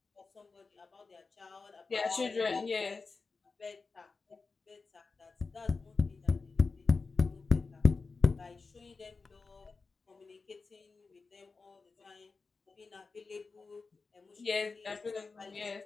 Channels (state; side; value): quieter; right; 4.3 dB